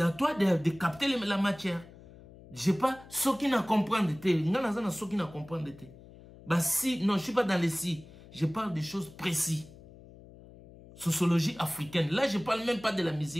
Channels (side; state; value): left; noise; hum, 20 dB below the sound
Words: à toi de capter la matière. Je sais pas ceux qui ne comprennent pas. Ceux qui ne comprennent pas. Bah si, non, je suis pas dans les si. Je parle des choses précises. Sociologie africaine. Là, je parle même pas de la